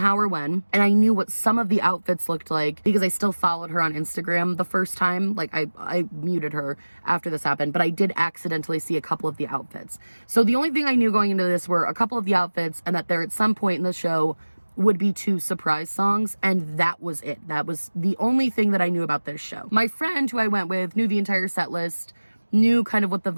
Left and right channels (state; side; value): inverted; both; correlation -1.00